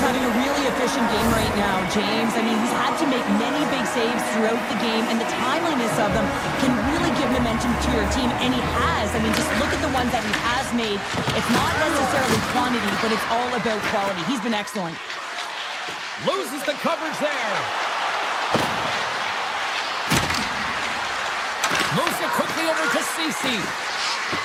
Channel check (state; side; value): identical; both; correlation 1.00